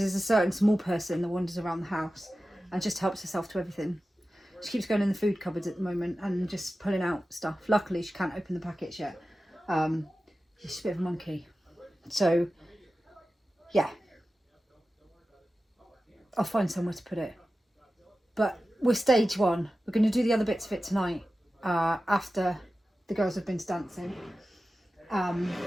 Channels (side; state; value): both; normal; correlation 0.94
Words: there's a certain small person that wanders around the house and just helps herself to everything. She keeps going in the food cupboards at the moment and just pulling out stuff. Luckily, she can't open the packets yet. She's a bit of a monkey. So, yeah. I'll find somewhere to put it. But we're stage one. We're going to do the other bits of it tonight after the girls have been dancing.